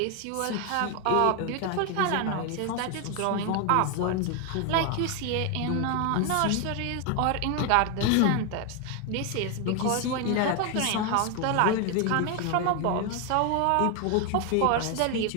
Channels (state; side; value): different; both; correlation 0.01